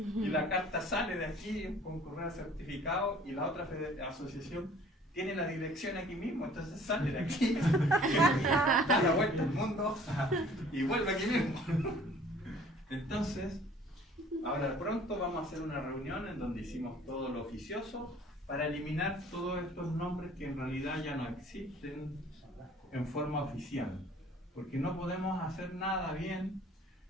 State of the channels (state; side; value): normal; both; correlation 0.53